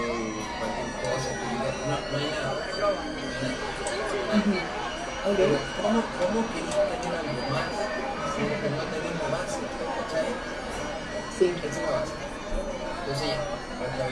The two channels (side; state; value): both; identical; correlation 1.00